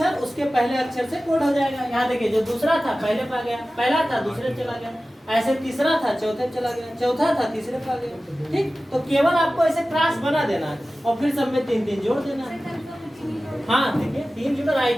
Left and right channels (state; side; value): normal; both; correlation 0.96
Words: उसके पहले अक्षर से कोड हो जाएगा। यहाँ देखिए जो दूसरा था पहले पे आ गया, पहला था दूसरे चला गया, ऐसे तीसरा था चौथे चला गया, चौथा था तीसरे पे आ गया। ठीक, तो केवल आपको ऐसे क्रॉस बना देना है और फिर सब में 3 3 जोड़ देना है। हाँ देखिए 3 जुड़ा,